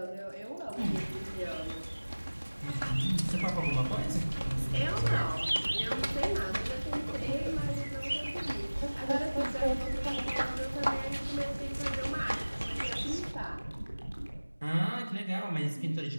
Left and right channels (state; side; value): inverted; both; correlation -1.00